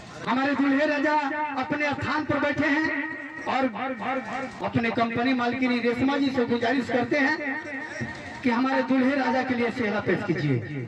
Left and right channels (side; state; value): both; identical; correlation 1.00